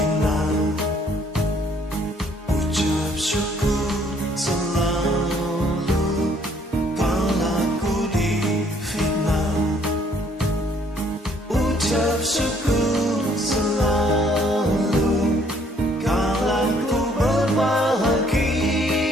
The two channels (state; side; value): normal; both; correlation 0.63